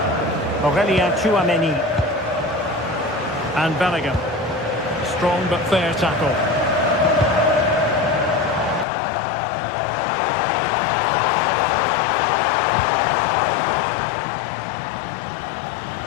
Aurélien Tchouameni. And Bellingham. Strong but fair tackle.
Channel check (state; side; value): drops out; right; at 8.8 s